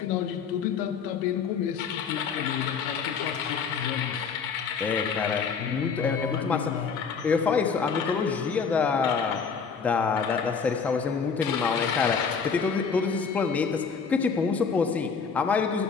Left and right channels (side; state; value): right; quieter; 5.9 dB